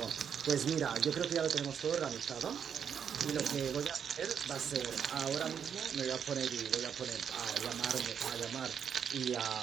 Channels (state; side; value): quieter; left; 7.7 dB